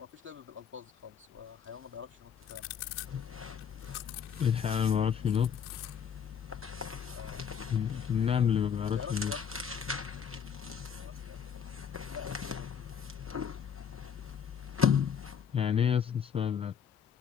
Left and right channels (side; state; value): right; quieter; 7.6 dB